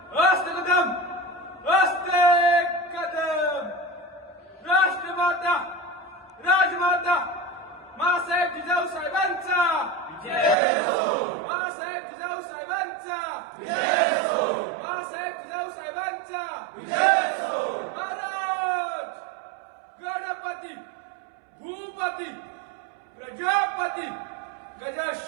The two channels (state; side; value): drops out; left; at 10.6 s